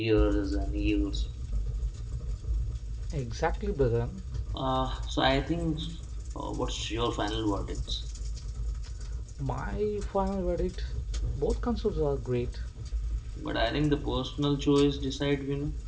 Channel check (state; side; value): identical; both; correlation 1.00